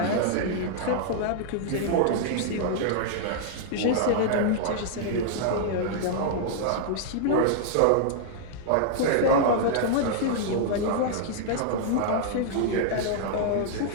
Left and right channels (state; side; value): different; both; correlation -0.01